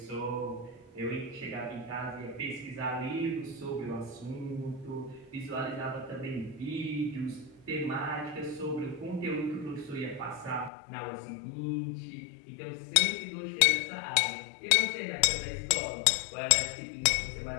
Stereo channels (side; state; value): right; drops out; at 10.7 s